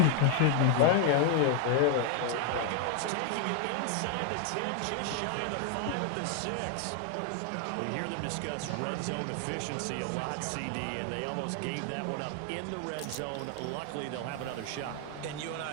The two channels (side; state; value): both; different; correlation 0.00